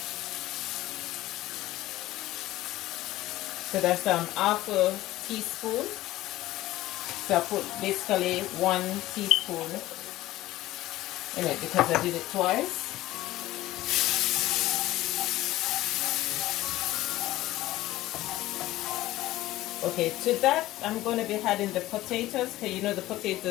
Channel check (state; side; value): quieter; right; 16.1 dB